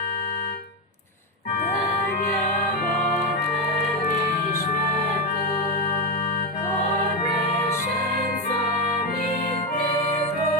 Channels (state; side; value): normal; both; correlation 0.09